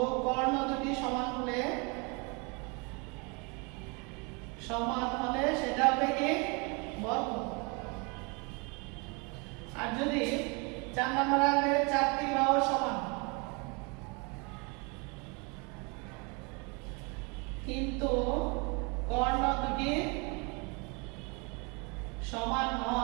কর্ণ দুটি সমান হলে সেটা হবে কি বর্গ। আর যদি 4 নম্বর হবে 4টি বাহু সমান কিন্তু কর্ণ দুটি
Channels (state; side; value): quieter; left; 31.3 dB